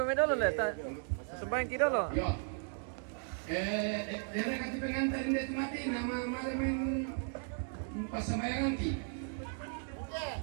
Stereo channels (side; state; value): left; silent; 54 dB below the other